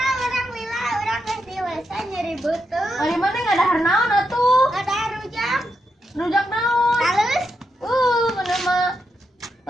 orang lila orang geus dewasa nyeri beuteung. Ari mana ngadahar naon atuh? Ada rujak. Rujak naon? Halus. Mana mah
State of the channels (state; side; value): normal; both; correlation 0.84